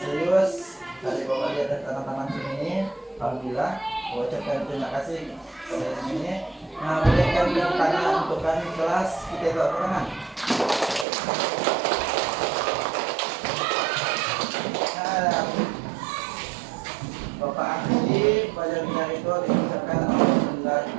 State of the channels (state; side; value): drops out; left; at 11.1 s